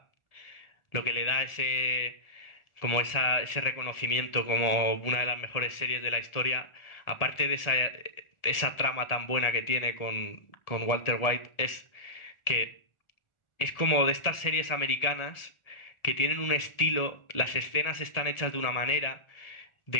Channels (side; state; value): right; late; 1.7 ms